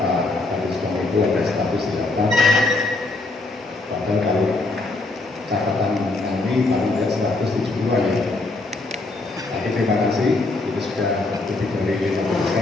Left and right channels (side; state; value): right; quieter; 3.2 dB